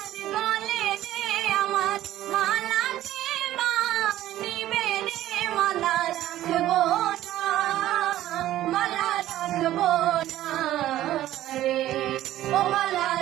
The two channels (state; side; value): quieter; left; 13.8 dB